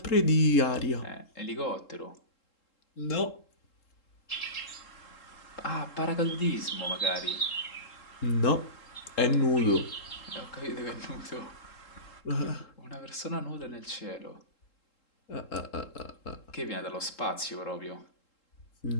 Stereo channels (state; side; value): late; right; 3.7 ms